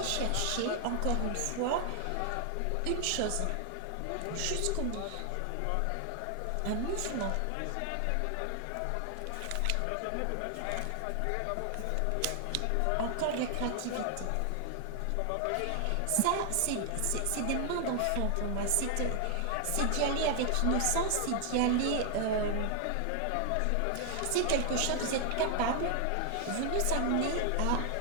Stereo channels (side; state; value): both; different; correlation 0.00